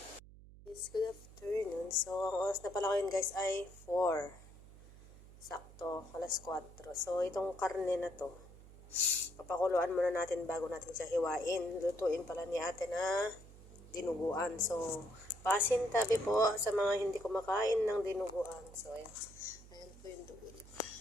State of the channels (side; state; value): right; noise; hum, 19 dB below the sound